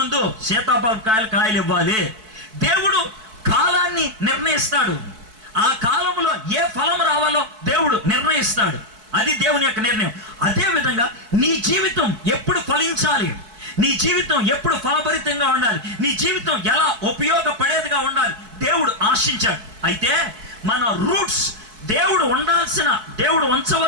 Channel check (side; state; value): left; late; 4.6 ms